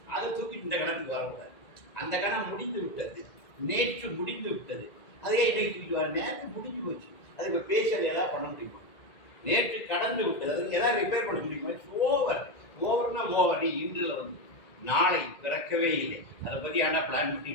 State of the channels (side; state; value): right; late; 1.9 ms